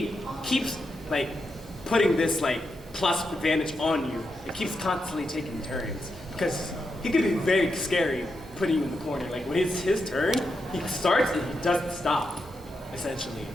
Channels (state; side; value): normal; both; correlation 0.85